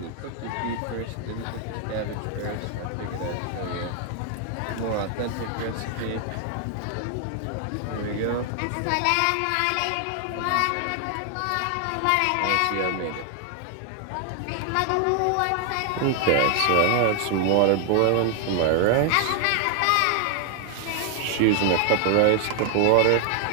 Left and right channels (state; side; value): different; both; correlation 0.00